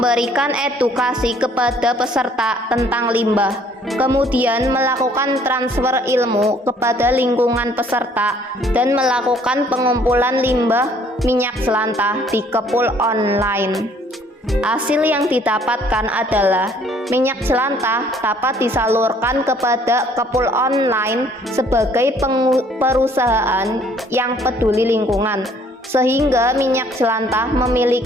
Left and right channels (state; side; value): normal; both; correlation 0.60